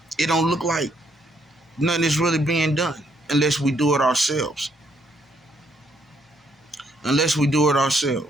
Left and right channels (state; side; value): normal; both; correlation 0.71